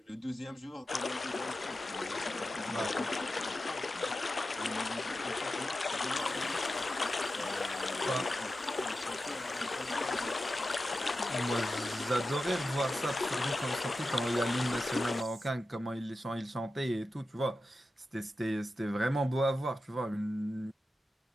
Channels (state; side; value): normal; both; correlation 0.92